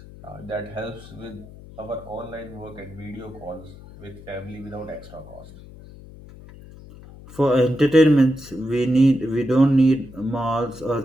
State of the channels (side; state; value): left; noise; hum, 18 dB below the sound